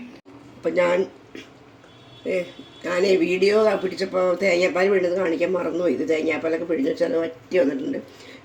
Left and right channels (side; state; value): both; identical; correlation 1.00